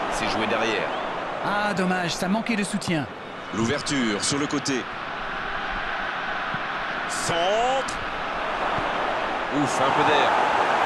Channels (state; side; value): identical; both; correlation 1.00